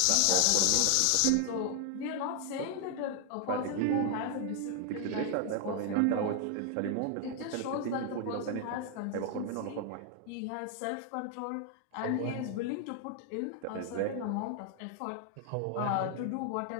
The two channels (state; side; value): different; both; correlation 0.00